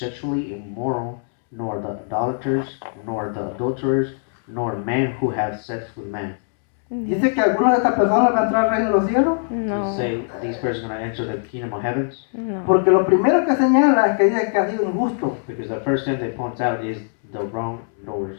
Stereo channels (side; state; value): right; silent; digital silence